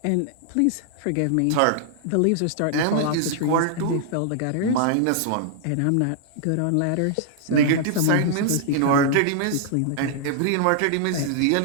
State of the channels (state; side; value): different; both; correlation -0.01